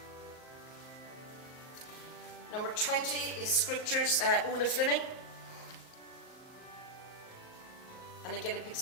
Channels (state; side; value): late; right; 38 ms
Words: Number 20 is Scriptures, Una Fleming. And again, it picks